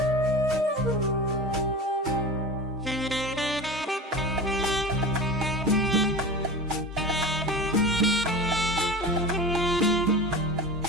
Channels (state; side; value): normal; both; correlation 0.31